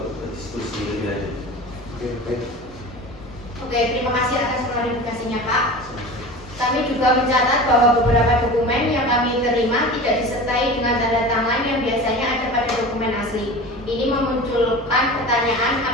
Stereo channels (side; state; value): both; normal; correlation 0.34